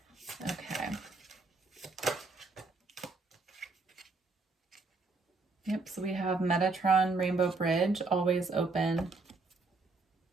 Okay. Yep, so we have Metatron, Rainbow Bridge, always open.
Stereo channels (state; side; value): quieter; left; 3.7 dB